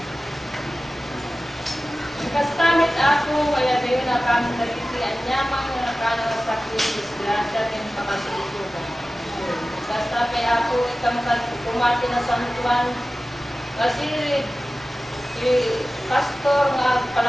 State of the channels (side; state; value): both; normal; correlation 0.96